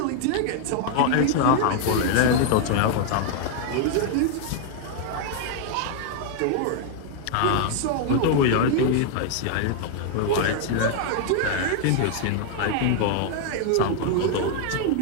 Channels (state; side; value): different; both; correlation 0.00